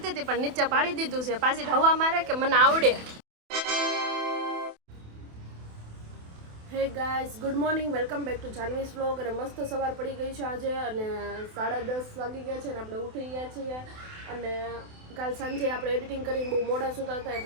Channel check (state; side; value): late; left; 28 ms